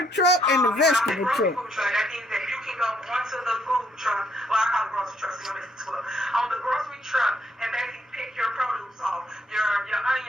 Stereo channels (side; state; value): both; normal; correlation 0.71